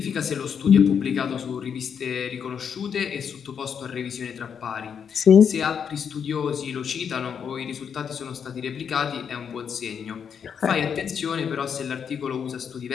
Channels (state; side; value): quieter; right; 7.3 dB